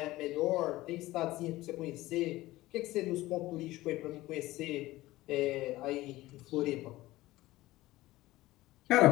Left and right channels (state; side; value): quieter; right; 17.7 dB